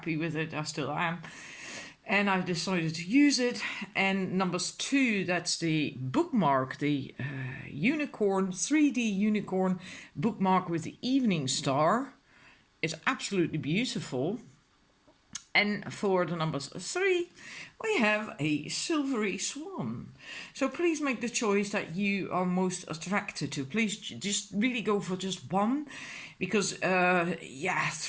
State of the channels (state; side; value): identical; both; correlation 1.00